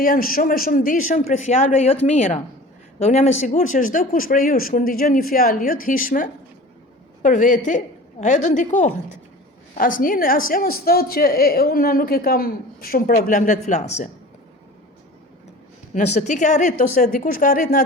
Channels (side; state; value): both; normal; correlation 0.39